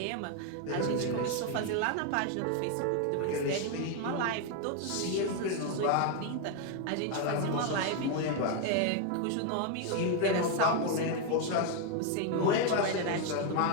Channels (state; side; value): different; both; correlation 0.01